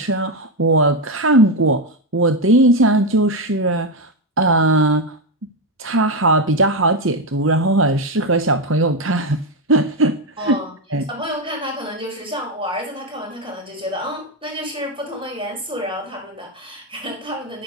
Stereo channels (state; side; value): normal; both; correlation 0.08